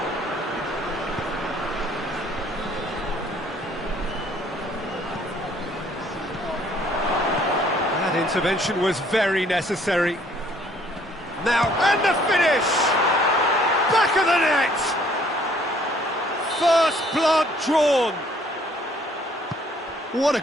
That intervention was very necessary. Now, and the finish! Back of the net! First blood drawn! What a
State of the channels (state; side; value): normal; both; correlation 0.61